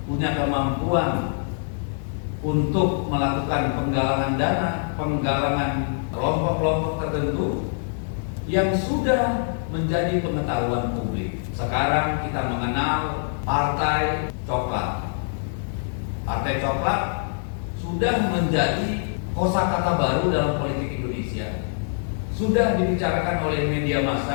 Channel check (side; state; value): right; silent; digital silence